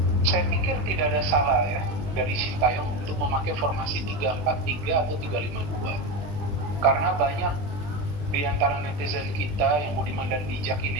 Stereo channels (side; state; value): left; late; 20 ms